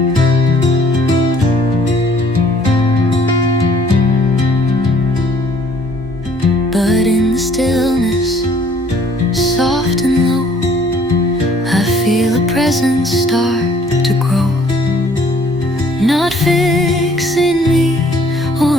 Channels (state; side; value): normal; both; correlation 0.58